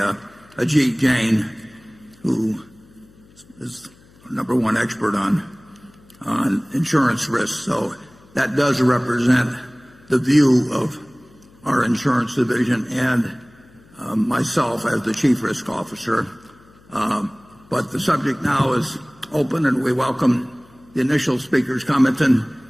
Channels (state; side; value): noise; left; hum, 27 dB below the sound